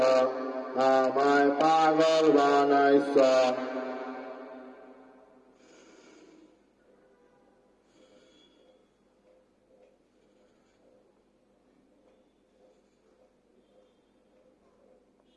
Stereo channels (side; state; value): both; identical; correlation 1.00